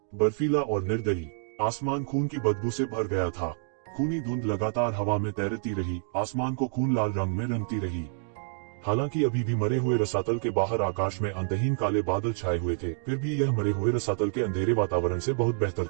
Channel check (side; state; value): left; silent; digital silence